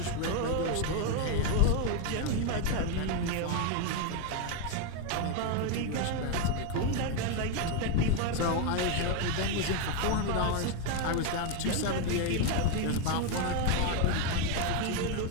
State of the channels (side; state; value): both; different; correlation 0.01